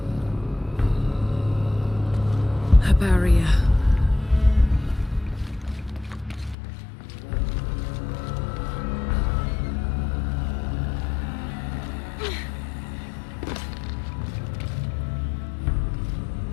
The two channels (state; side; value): drops out; right; at 6.6 s